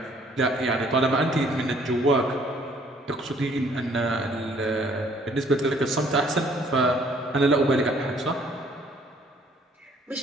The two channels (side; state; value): both; normal; correlation 0.60